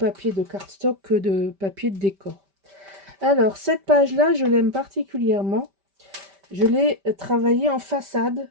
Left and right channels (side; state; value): left; late; 5.1 ms